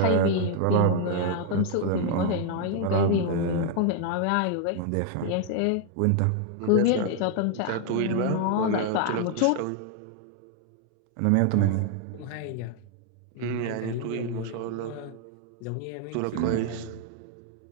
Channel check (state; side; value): different; both; correlation 0.00